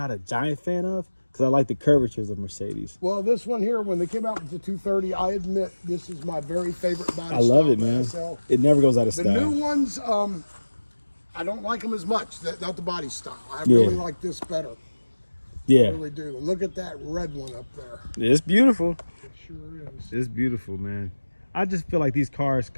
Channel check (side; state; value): both; inverted; correlation -1.00